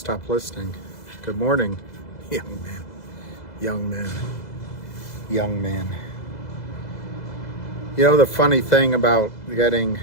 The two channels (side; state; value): right; late; 2.0 ms